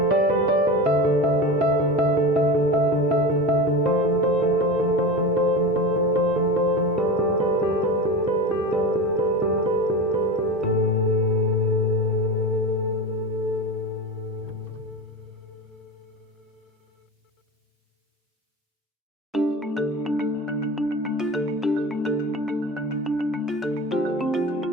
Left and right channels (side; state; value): both; normal; correlation 0.27